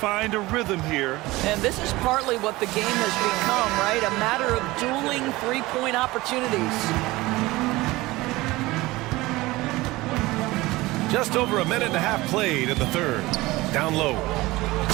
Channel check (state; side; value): quieter; left; 20.0 dB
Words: a rhythm here. And this is partly what the game has become, right? A matter of dueling three-point opportunities. Just over a minute and a half played in the third. Down low.